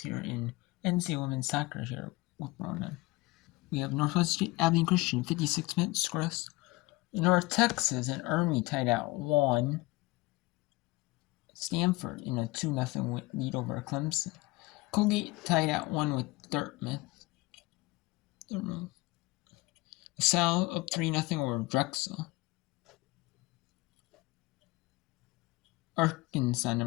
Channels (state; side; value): quieter; right; 21.3 dB